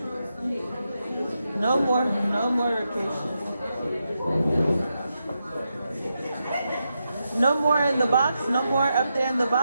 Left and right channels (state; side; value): inverted; both; correlation -0.86